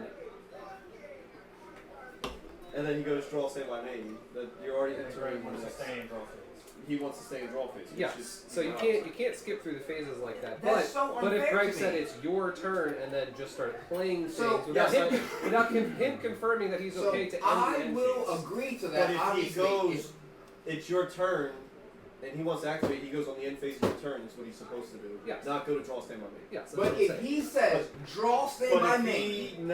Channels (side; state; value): both; identical; correlation 1.00